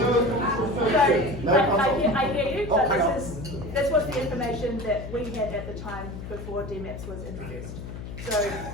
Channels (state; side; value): noise; left; hum, 9 dB below the sound